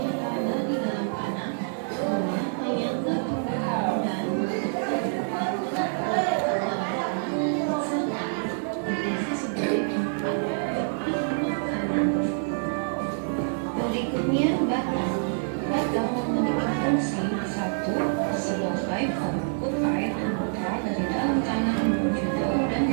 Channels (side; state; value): left; silent; 60 dB below the other